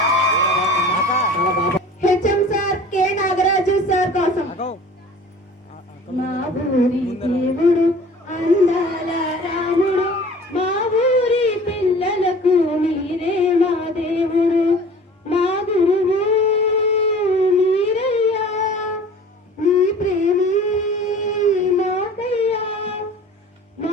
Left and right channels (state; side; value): normal; both; correlation 0.44